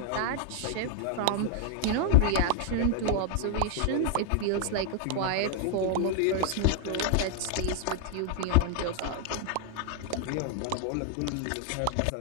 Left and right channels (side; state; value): both; different; correlation 0.00